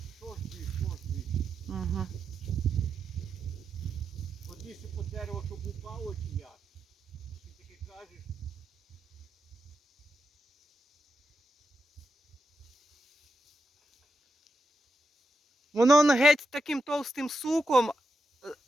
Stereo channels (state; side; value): normal; both; correlation 0.86